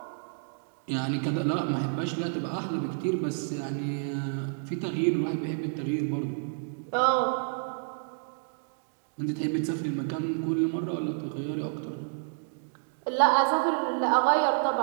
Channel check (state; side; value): silent; left; digital silence